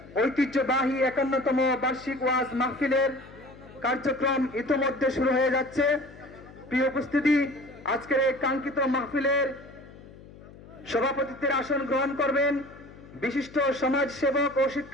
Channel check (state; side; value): noise; left; hum, 20 dB below the sound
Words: ঐতিহ্যবাহী 51তম বার্ষিক ওয়াজ মাহফিলের কার্যক্রম ইতোমধ্যে শুরু হয়ে যাচ্ছে। প্রিয় উপস্থিতি, আজকের এই কাঙ্ক্ষিত মাহফিলের সভাপতিত্বের আসন গ্রহণ করবেন বিশিষ্ট সমাজ সেবক ও